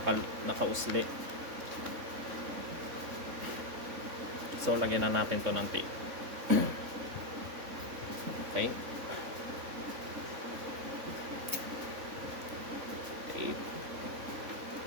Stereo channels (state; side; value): late; left; 3.6 ms